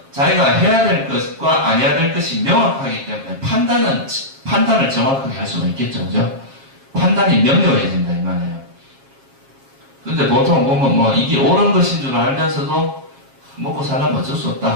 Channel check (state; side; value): late; left; 7.4 ms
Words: 자기가 해야 될 것과 안 해야 될 것이 명확하기 때문에 판단을 정확하게 할 수가 있겠죠. 그죠? 판단이 명료해진다 이 말이에요. 근데 보통 보면 뭐 이게 옳은 것인 줄 알면서도 먹고 살려면 어쩔 수